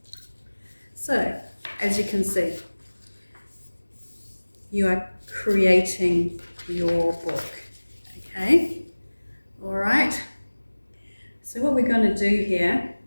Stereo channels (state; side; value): inverted; both; correlation -1.00